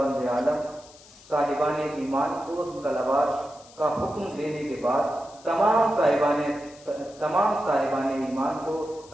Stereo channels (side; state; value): left; noise; hiss, 23 dB below the sound